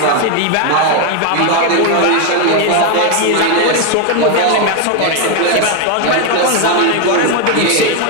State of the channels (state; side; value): different; both; correlation 0.01